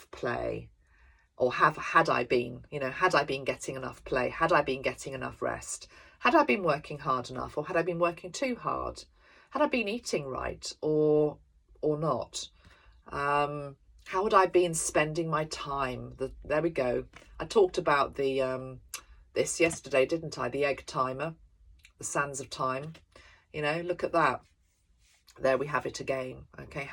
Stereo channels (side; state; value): both; identical; correlation 1.00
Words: play? Or had I been getting enough play? Had I been getting enough rest? Had I been working hard enough, or had I been working too hard? Had I been eating right or not? How had I been spending my time? There we go. I talked about this yesterday, didn't I? The egg timer, the sands of time. You know, look at that. There we have it again. Okay,